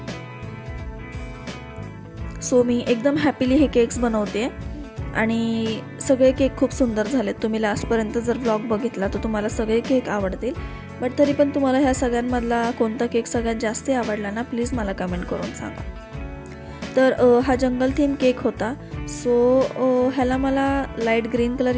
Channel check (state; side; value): identical; both; correlation 1.00